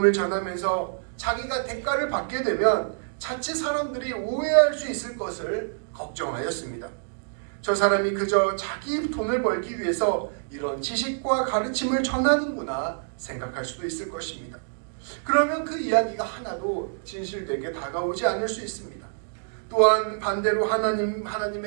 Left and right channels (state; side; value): silent; left; digital silence